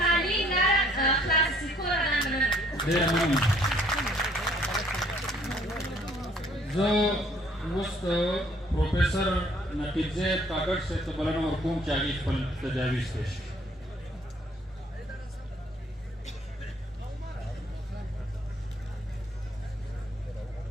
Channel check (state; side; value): normal; both; correlation 0.61